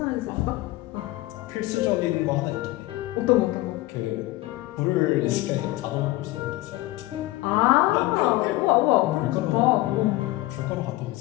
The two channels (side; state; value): right; quieter; 18.7 dB